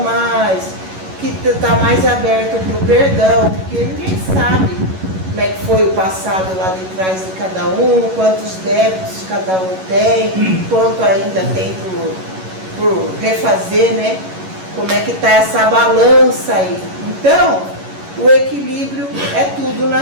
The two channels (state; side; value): late; left; 11 ms